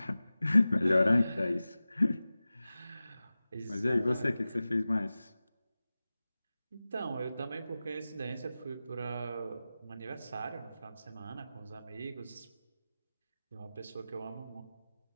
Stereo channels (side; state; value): both; inverted; correlation -0.96